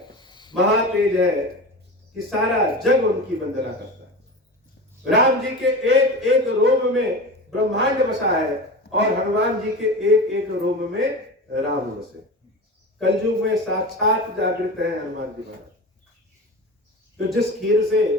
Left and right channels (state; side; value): normal; both; correlation 0.29